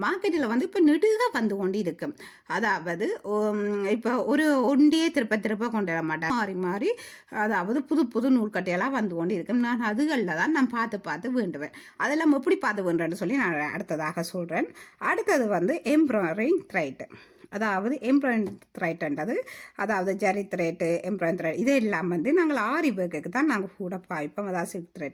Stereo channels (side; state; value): both; identical; correlation 1.00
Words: மார்க்கெட்டில் இப்போ நெடுக கொண்டு இருக்கும். அதாவது இப்போ ஒரு ஒண்டியே திருப்ப கொண்டு வர மாட்டேன். மாறி அதாவது புது நூல்கட்டையெல்லாம் கொண்டு இருக்கும். நான் அதுகளில் தான் நான் பார்த்து வேண்டுவேன். அதெல்லாம் எப்படி பார்த்து வேண்டுறேன்னு சொல்லி நான் அடுத்ததாக சொல்கிறேன். அடுத்தது எம்ப்ராய்டரிங் த்ரெட். அதாவது எம்ப்ராய்டரிங் த்ரெட்ன்றது அதாவது ஜரி த்ரெட்டு, எம்ப்ராய்டரிங் த்ரெட் இதெல்லாம் நாங்கள் ஆரி ஒர்க்குக்கு தான் நாங்கள் கூட பாய்ப்போம். அதாவது சில்க்